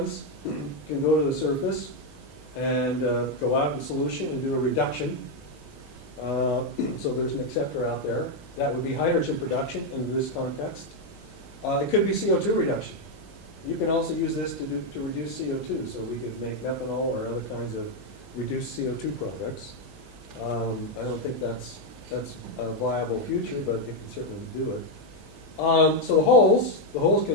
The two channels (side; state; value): both; normal; correlation 0.03